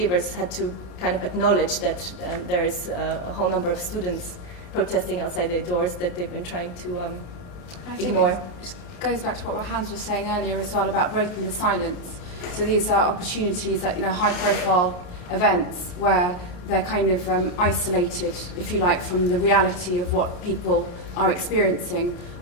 had to kind of acknowledge that there is a whole number of students protesting outside their doors that they've been trying to ignore. It goes back to what Hans was saying earlier as well about breaking the silence. So these are opportunities that, high-profile events where they're kind of isolated, if you like, from the reality of what people are experiencing.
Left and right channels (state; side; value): late; right; 34 ms